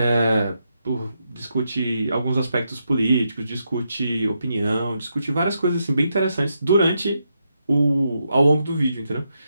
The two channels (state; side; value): inverted; both; correlation -0.82